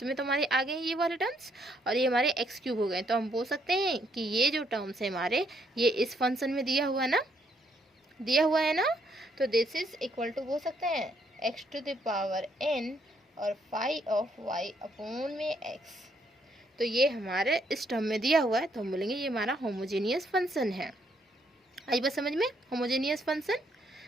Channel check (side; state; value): both; normal; correlation 0.72